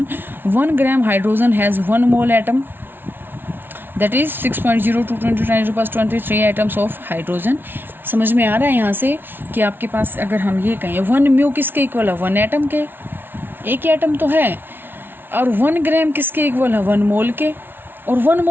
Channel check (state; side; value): late; left; 0.10 ms